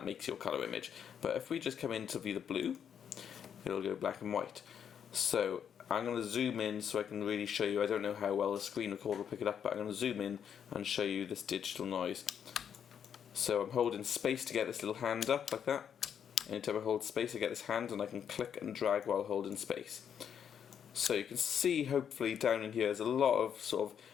makes your color image. But if we just come in to view the blue, it'll go black and white. So I'm going to zoom in so I can really show you. I don't know how well the screen recorder will pick it up, but I'm going to zoom in and show you this digital noise. So I'm holding space to get this little hand up like that. Anytime I hold space, I get this hand, and I can click and drag while holding space. So you can see, hopefully, down in here there's a lot of sort of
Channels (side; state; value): right; quieter; 8.2 dB